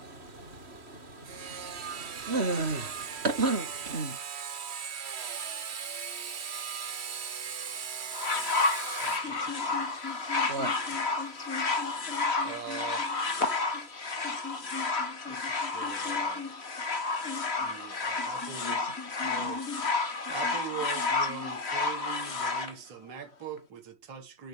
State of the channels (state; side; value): late; left; 3.1 ms